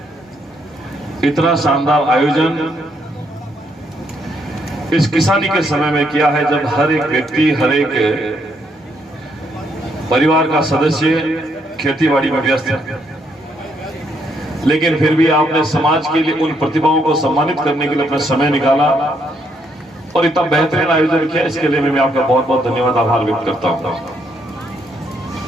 इतना शानदार आयोजन इस किसानी के समय में किया है, जब हर एक व्यक्ति, हर एक परिवार का सदस्य खेतीबाड़ी में व्यस्त है। लेकिन फिर भी आपने समाज के लिए उन प्रतिभाओं को सम्मानित करने के लिए अपना समय निकाला और इतना बेहतरीन आयोजन किया। इसके लिए मैं आपका बहुत बहुत धन्यवाद, आभार व्यक्त करता हूं।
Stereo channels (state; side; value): normal; both; correlation 0.74